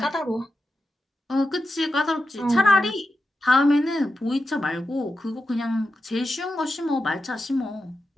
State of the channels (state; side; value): normal; both; correlation 0.90